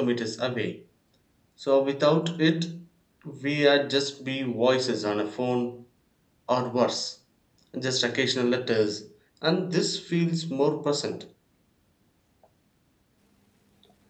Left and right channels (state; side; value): identical; both; correlation 1.00